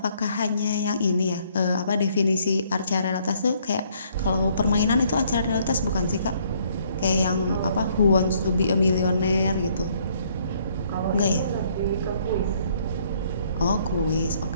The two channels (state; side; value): inverted; both; correlation -0.65